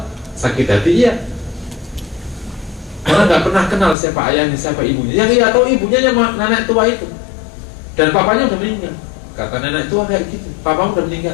sakit hati iya. Karena nggak pernah kenal siapa ayahnya, siapa ibunya. Yang ia tahu ibunya yang nenek tua itu, dan papanya udah meninggal. Kata nenek tua kayak gitu, papamu udah meninggal,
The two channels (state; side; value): drops out; right; at 4.0 s